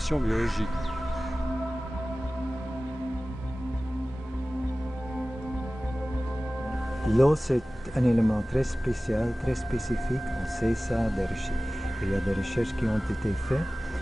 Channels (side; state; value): both; normal; correlation 0.97